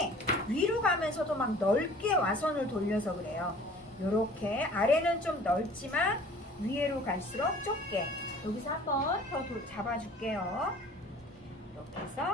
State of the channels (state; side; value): normal; both; correlation 0.48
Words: 위로 가면서도 막 넓게 와선을 돌려서 그래요. 요렇게 아래는 좀 넓지만 위로 갈수록 좁게. 여기서 한번 더 잡아줄게요. 이렇게